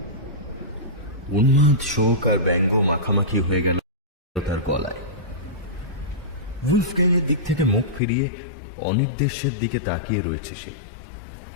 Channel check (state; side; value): drops out; right; at 8.0 s